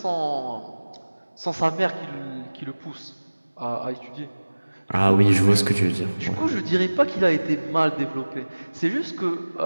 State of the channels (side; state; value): both; inverted; correlation -1.00